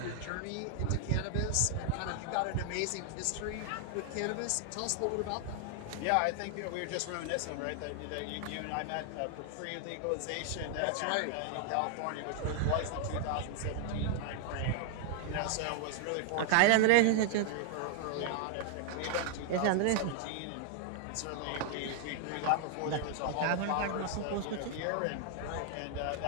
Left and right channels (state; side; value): different; both; correlation 0.00